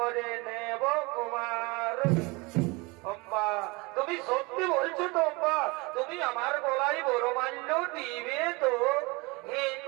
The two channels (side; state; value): left; quieter; 26.0 dB